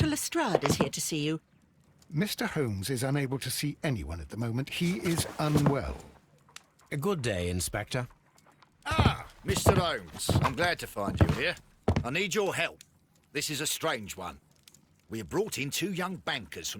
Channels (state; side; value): identical; both; correlation 1.00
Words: Lestrade is here to see you. Mr. Holmes is unable to see anyone at the moment. He is unwell. A good day, Inspector. Ah, Mr. Holmes. I'm glad to find you here. I need your help. This is a strange one. We have brought in 2 young bankers